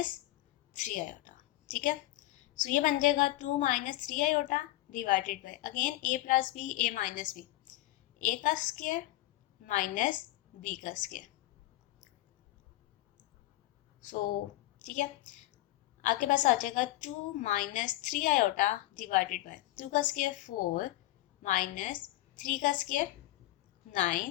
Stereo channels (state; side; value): quieter; right; 16.9 dB